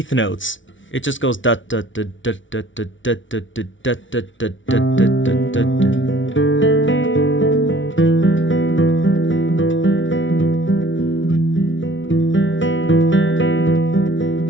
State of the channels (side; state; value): right; late; 0.56 ms